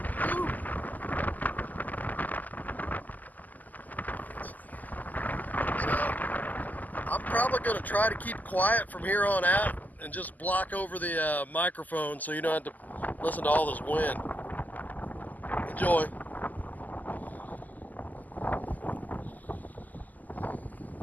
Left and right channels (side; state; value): right; late; 0.081 ms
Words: Woo. So I'm probably going to try to keep quiet from here on out and just block over the microphone so you don't have to listen to all this wind. Enjoy.